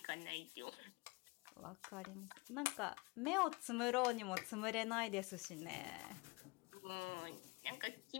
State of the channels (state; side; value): quieter; right; 26.3 dB